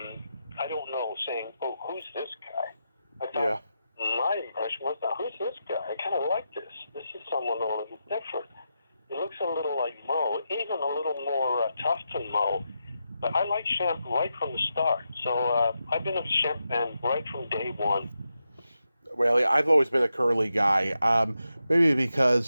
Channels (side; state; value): both; inverted; correlation -0.87